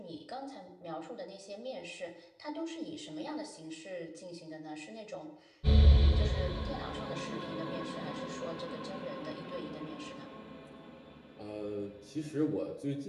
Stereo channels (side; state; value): both; identical; correlation 1.00